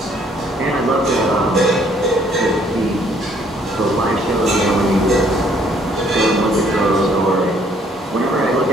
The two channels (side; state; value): both; normal; correlation 0.64